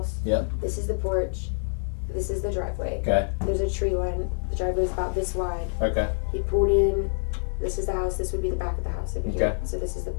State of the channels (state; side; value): silent; right; digital silence